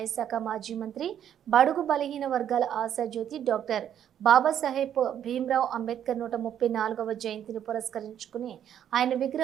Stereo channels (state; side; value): quieter; left; 9.8 dB